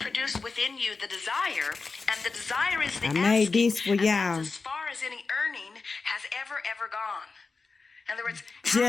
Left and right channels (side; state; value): right; quieter; 4.3 dB